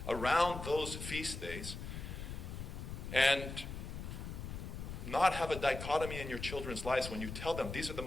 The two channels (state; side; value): noise; left; rumble, 7 dB below the sound